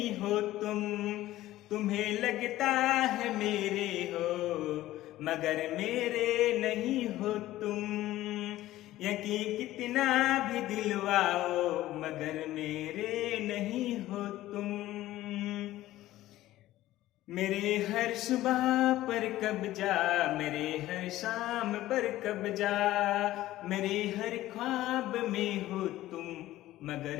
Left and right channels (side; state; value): right; quieter; 15.3 dB